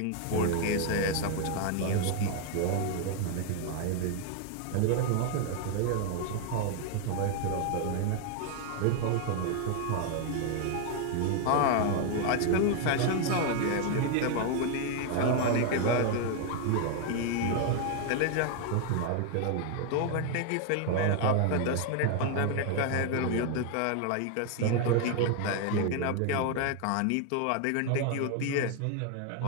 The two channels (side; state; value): both; different; correlation 0.00